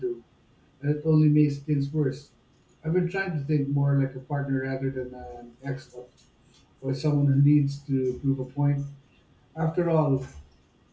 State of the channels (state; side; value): identical; both; correlation 1.00